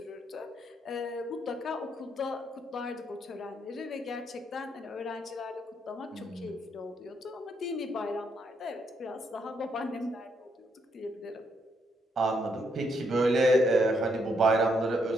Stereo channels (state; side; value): normal; both; correlation 0.75